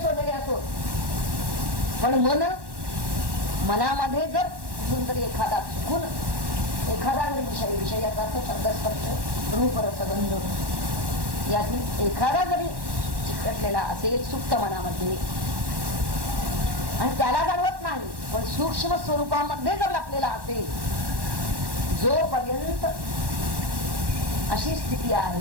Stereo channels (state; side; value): late; left; 1.1 ms